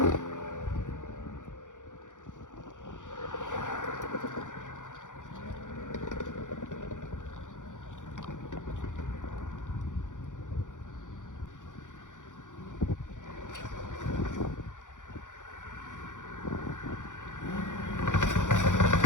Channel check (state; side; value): late; right; 0.87 ms